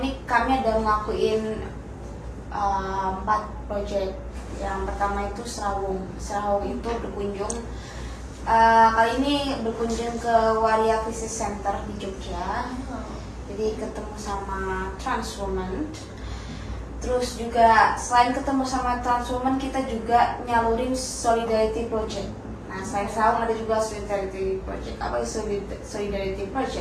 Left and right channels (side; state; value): both; identical; correlation 1.00